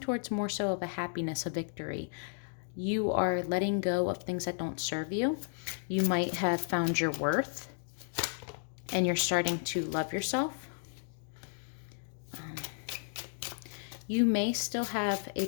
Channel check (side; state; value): right; silent; digital silence